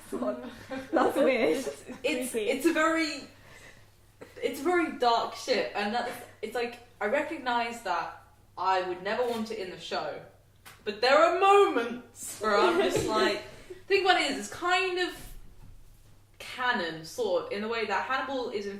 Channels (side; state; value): both; identical; correlation 1.00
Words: weird. it's a very dark ship. And it's like, I recognise that I would never want it in the show. But there are moments where I'm just like... think what it is, it's kind of canon, sort of, in the way that Hannibal is